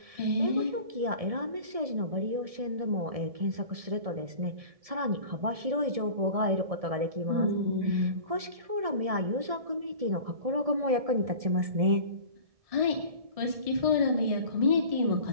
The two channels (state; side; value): late; left; 1.7 ms